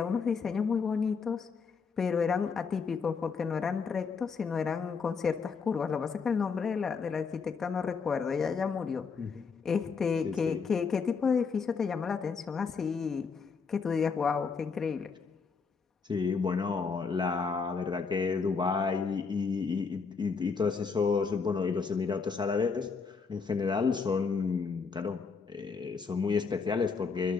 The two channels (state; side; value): quieter; right; 5.3 dB